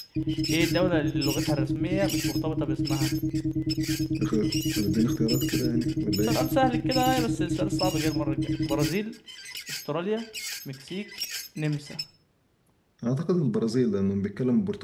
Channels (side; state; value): both; identical; correlation 1.00